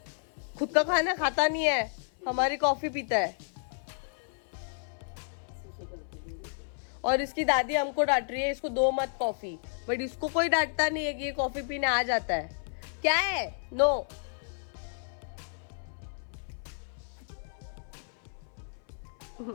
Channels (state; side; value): silent; right; 57 dB below the other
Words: खुद का खाना खाता नहीं है, हमारी कॉफी पीता है। और इसकी दादी हमको डांट रही है इसको दो मत कॉफी, बट इसको कोई डांटता नहीं है कि ये कॉफी पीने आ जाता है। क्या है? No.